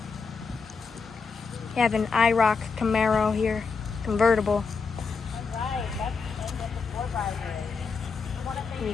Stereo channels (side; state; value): right; quieter; 5.0 dB